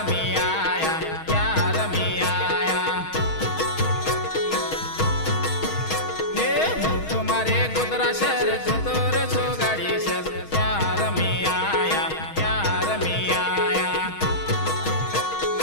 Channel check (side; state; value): right; late; 6.3 ms